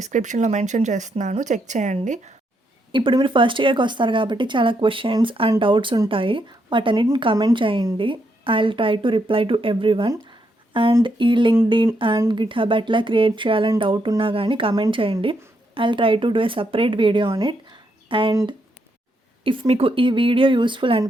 మెన్షన్ చేస్తున్నాను. చెక్ చేయండి. ఇప్పుడు మీరు ఫస్ట్ ఇయర్‌కి వస్తారు కాబట్టి చాలా క్వెషన్స్ అండ్ డౌట్స్ ఉంటాయి. వాటన్నిటిని కమెంట్ చేయండి. I will try to reply to everyone. And ఈ లింక్డ్ఇన్ అండ్ గిట్‌హబ్ ఎట్లా క్రియేట్ చేయాలని డౌట్ ఉన్నా గానీ కమెంట్ చేయండి. I will try to do a separate video on it. And if మీకు ఈ వీడియో యూస్ఫుల్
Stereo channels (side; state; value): both; normal; correlation 0.78